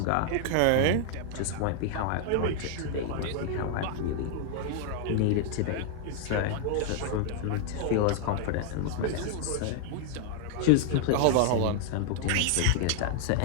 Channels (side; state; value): both; different; correlation 0.00